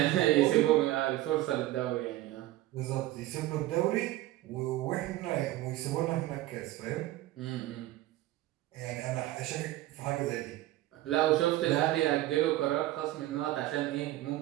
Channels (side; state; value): left; quieter; 16.1 dB